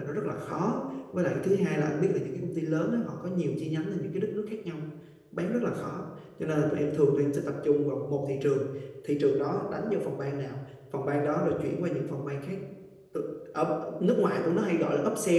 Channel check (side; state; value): both; identical; correlation 1.00